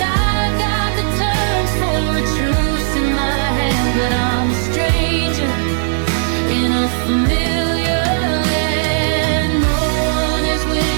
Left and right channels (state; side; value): silent; left; digital silence